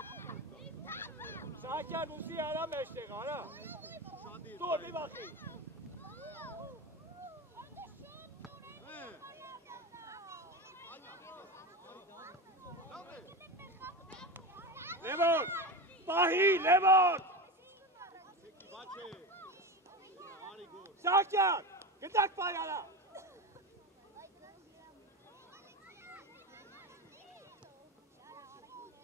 Սահակյան ուզի արա մեջտեղ, արա։ Տոր մի բախի։ Լևոն, պահի, Լևոն։ Սահակյան, գտակ պահի արա։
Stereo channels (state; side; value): normal; both; correlation 0.22